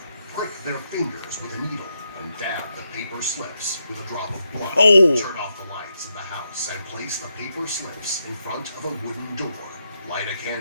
prick their fingers with a needle, and dab the paper slips with a drop of blood. Turn off the lights in the house and place the paper slips in front of a wooden door. Light a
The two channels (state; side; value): inverted; both; correlation -0.83